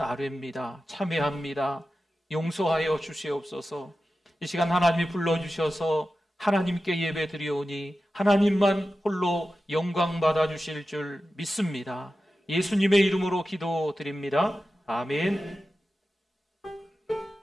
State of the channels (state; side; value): normal; both; correlation 0.93